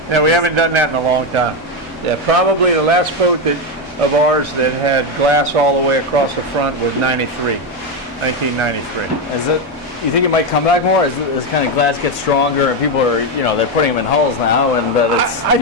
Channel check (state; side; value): normal; both; correlation 0.09